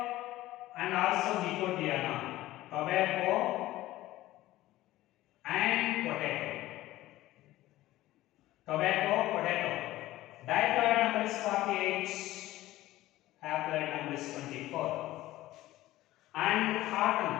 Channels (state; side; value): quieter; right; 16.2 dB